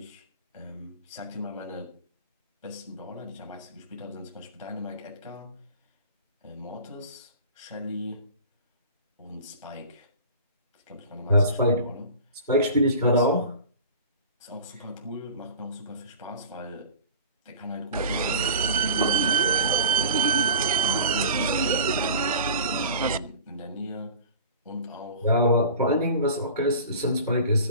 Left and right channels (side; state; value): both; inverted; correlation -0.37